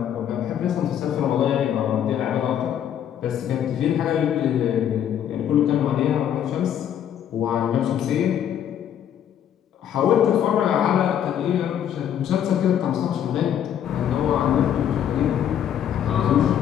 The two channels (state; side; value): quieter; right; 9.8 dB